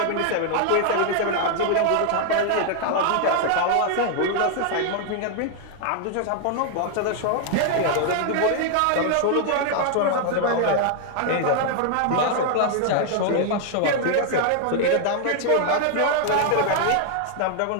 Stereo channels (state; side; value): different; both; correlation 0.00